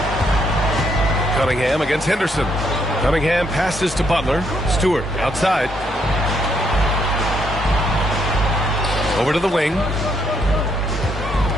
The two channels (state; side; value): normal; both; correlation 0.73